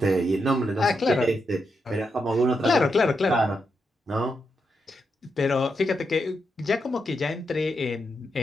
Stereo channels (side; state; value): both; normal; correlation 0.84